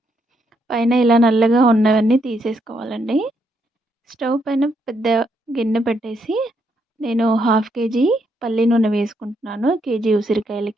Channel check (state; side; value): normal; both; correlation 0.76